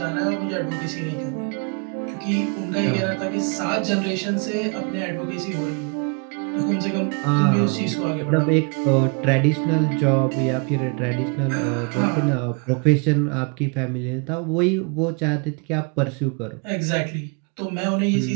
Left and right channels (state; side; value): quieter; left; 35.7 dB